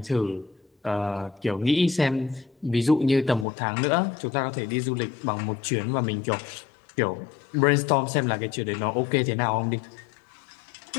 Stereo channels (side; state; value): right; drops out; at 3.5 s